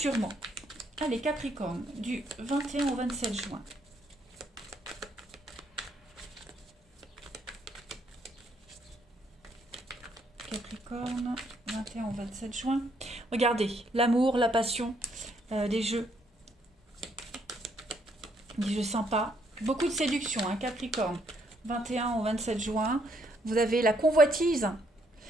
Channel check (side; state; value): both; normal; correlation 0.71